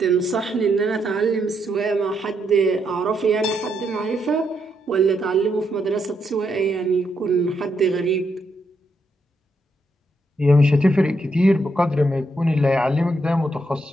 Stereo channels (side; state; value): both; normal; correlation 0.78